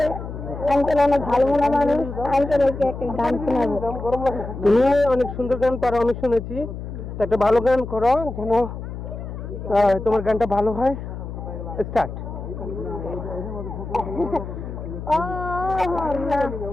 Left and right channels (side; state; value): left; noise; hum, 8 dB below the sound